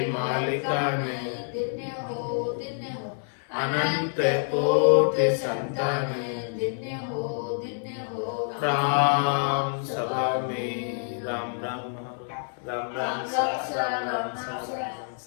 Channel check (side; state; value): right; silent; 60 dB below the other